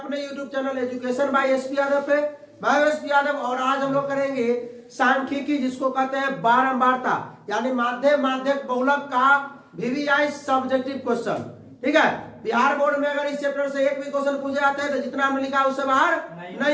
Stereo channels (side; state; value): both; identical; correlation 1.00